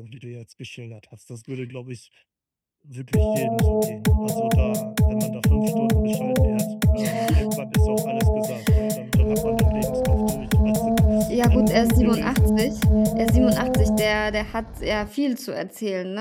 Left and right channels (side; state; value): both; identical; correlation 1.00